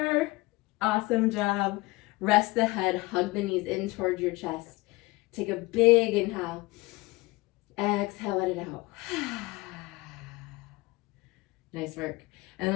Awesome job. Rest the head, hug the knees in towards your chest. Take a big inhale. Exhale, let it out. Nice work. And then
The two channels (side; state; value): right; quieter; 22.4 dB